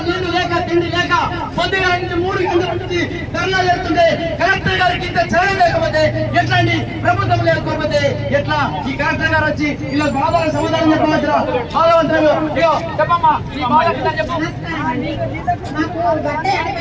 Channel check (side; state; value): both; identical; correlation 1.00